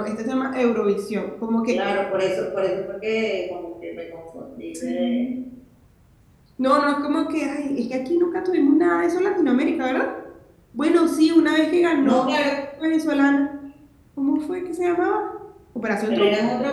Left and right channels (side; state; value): both; identical; correlation 1.00